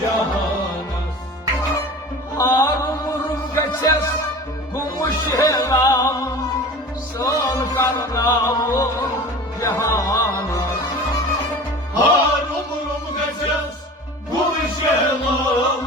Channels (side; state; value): both; normal; correlation 0.38